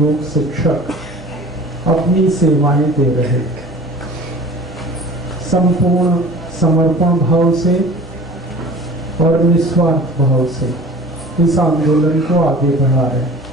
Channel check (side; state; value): both; normal; correlation 0.43